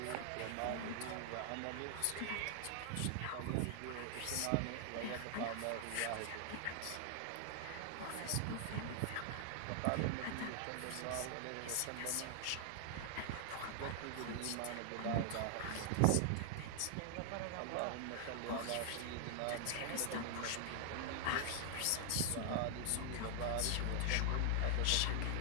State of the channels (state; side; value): different; both; correlation 0.00